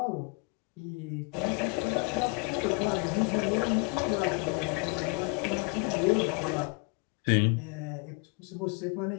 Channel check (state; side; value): quieter; right; 30.7 dB